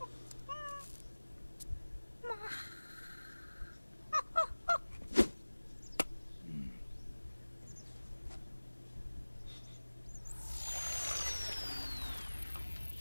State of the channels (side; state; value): both; inverted; correlation -1.00